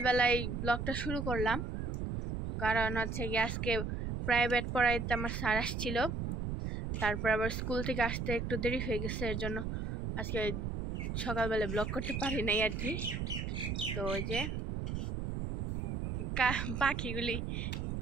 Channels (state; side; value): noise; right; rumble, 3 dB below the sound